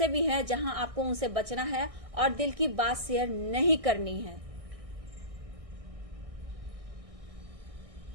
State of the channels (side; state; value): left; late; 1.6 ms